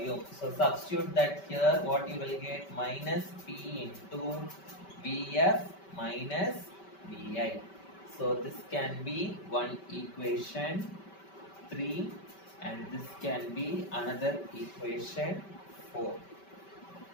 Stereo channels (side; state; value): right; late; 5.2 ms